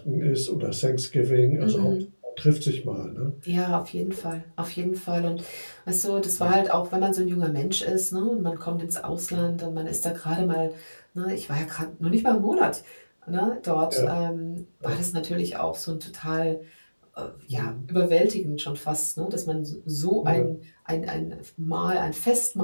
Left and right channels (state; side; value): inverted; both; correlation -1.00